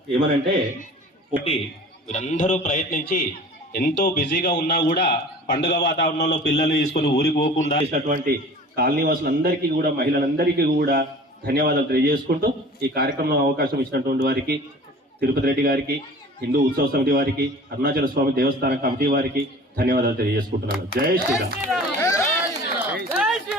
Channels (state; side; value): normal; both; correlation 0.43